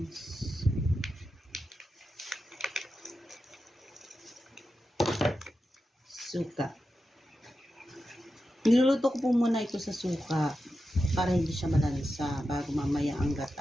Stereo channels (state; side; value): normal; both; correlation 0.90